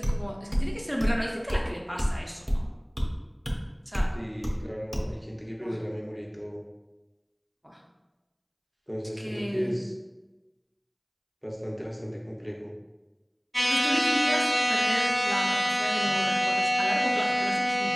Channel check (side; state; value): both; identical; correlation 1.00